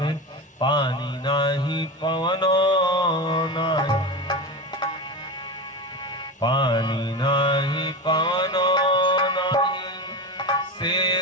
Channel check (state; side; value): normal; both; correlation 0.23